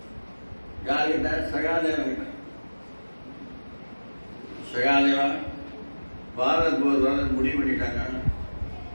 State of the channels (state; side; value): inverted; both; correlation -1.00